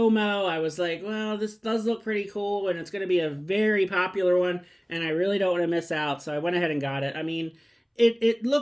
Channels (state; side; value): identical; both; correlation 1.00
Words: I was like, well, this does look pretty cool, and it's going to be a very popular one, and I really don't want to miss out, so I went ahead and got it. I mean, it